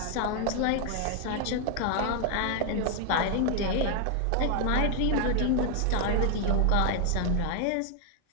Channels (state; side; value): different; both; correlation 0.00